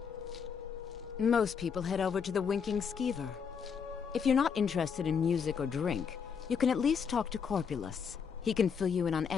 Most people head over to the Winking Skeever. If you're not interested in music or drink, you can at least talk to Corpulus. He can fill you in on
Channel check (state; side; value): quieter; right; 6.6 dB